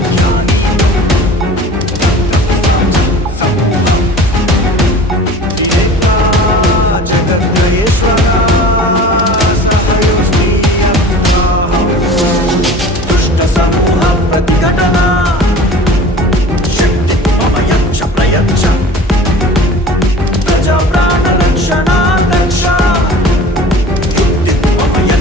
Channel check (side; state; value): both; normal; correlation 0.41